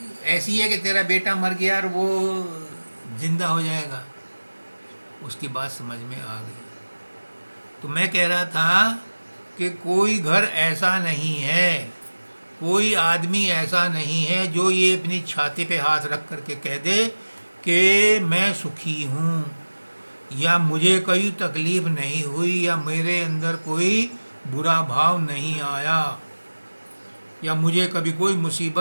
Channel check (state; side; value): inverted; both; correlation -1.00